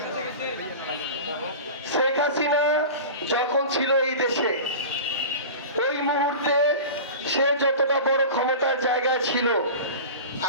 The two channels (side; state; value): both; inverted; correlation -0.33